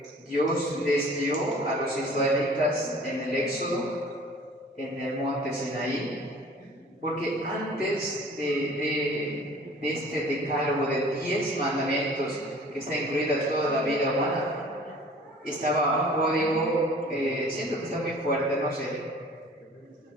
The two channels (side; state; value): both; normal; correlation 0.48